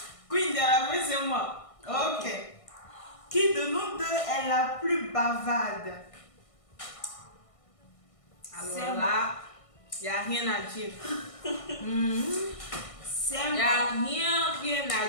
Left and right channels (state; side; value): late; right; 1.6 ms